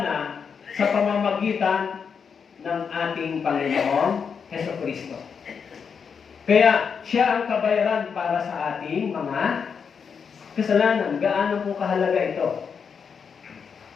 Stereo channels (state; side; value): quieter; right; 6.3 dB